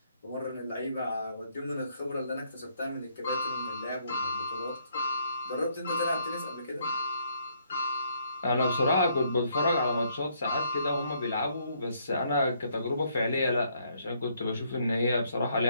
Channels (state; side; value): inverted; both; correlation -0.70